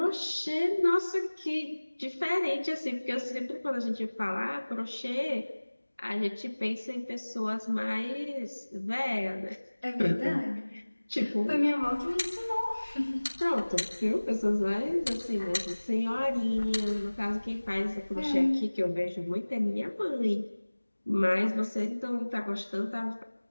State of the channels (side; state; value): both; inverted; correlation -1.00